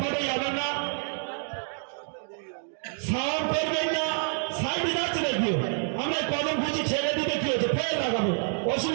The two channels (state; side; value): silent; left; 59 dB below the other